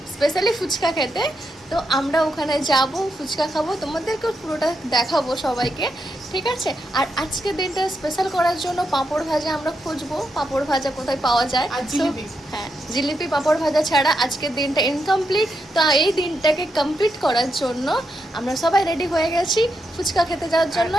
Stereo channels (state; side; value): normal; both; correlation 0.83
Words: স্পেশালি ফুচকা খেতে। তো আমরা ওখানে যাব, ফুচকা খাবো, তোমাদেরকে পুরোটা দেখাবো সবাইকে, ঠিক আছে? আর আজকের দিনটা স্পেশাল করার জন্য পাঁপড় ভাজা আমরা খুঁজবো, পাঁপড় ভাজা কোথায় পাওয়া যায়। আর জিলিপি। হ্যাঁ, জিলিপি পাঁপড় ভাজা ছাড়া আজকের দিনটা ইনকমপ্লিট। তো এই দিনটাকে কমপ্লিট করার জন্য আমরা সবাই রেডি হয়ে গেছি ফুচকা খেতে যাওয়ার জন্য।